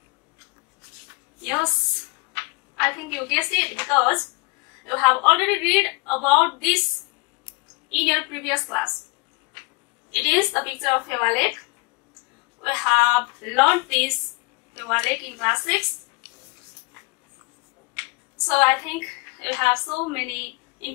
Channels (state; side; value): quieter; right; 26.7 dB